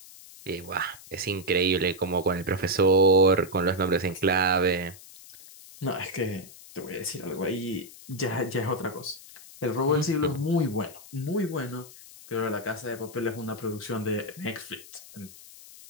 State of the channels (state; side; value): noise; left; hiss, 19 dB below the sound